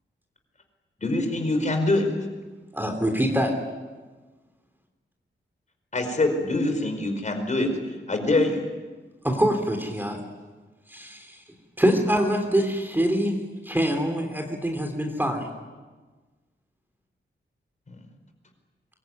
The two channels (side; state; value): both; normal; correlation 0.75